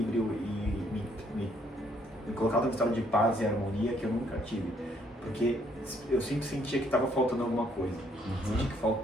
e me colocado num estado de paz e harmonia que eu nunca tive. Porque eu sempre sentia que estava faltando alguma coisa, sentia que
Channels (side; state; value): both; normal; correlation 0.67